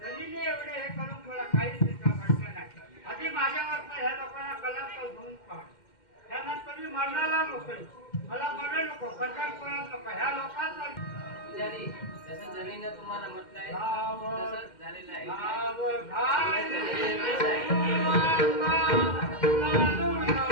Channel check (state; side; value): late; right; 2.1 ms